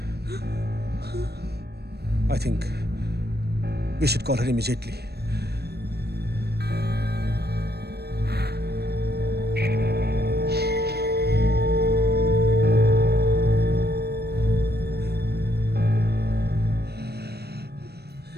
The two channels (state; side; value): late; left; 0.47 ms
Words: I think we should call her immediately.